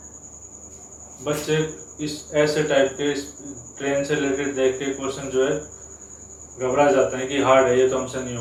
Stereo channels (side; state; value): both; identical; correlation 1.00